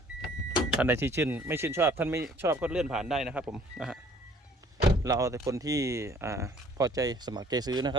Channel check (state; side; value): normal; both; correlation 0.56